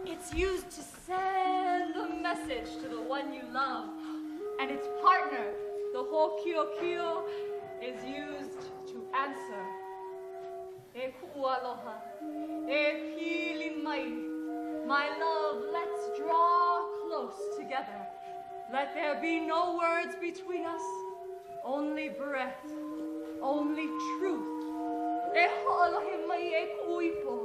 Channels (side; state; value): both; identical; correlation 1.00